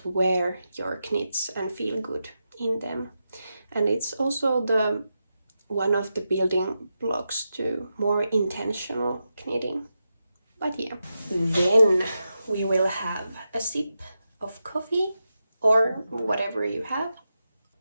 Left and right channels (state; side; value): inverted; both; correlation -0.89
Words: wear your knits and feel good in them. And it's also one of the building blocks to more intentional knitting. But yeah, then we will have a sip of coffee or whatever you have.